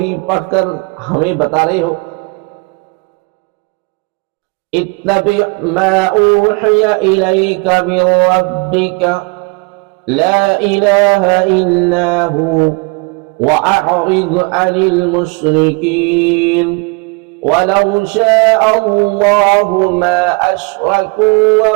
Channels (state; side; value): quieter; left; 29.5 dB